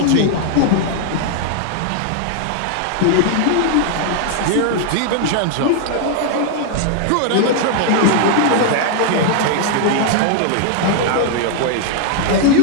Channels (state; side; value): different; both; correlation 0.00